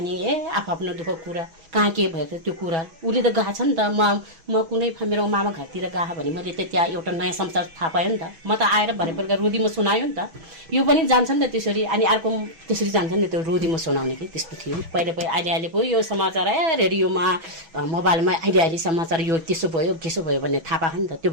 आफ्नो दुःख कुरा कहाँ के भयो त्यो कुरा उसले त गएको छ नि त। म कुनै मेरो मामा घरतिर गएको भने मैले त त्यहाँ एउटा नयाँ संसार थाहा पायो नि त। म त आएर भरे बेलुका रोधीमा सुनायो नि त। यो पनि जान्छ नि त त्यसरी, अनि अर्को त्यसरी जान्छ नि त, त्यो रोधीमा सुनाउने कि त्यस्तो थियो पहिले। अहिले पो यो समाचार रेडियोमा मोबाइलमा अहिले समाचार यो त्यसो भयो भन्ने थाहा पाएको नि त। त्यो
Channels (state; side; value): late; left; 6.1 ms